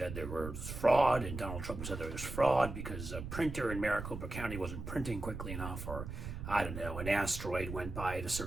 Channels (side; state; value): right; noise; rumble, 7 dB below the sound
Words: there was fraud, and Donald Trump said there was fraud because a printer in Maricopa County wasn't printing quickly enough, or I don't know, an asteroid went by at a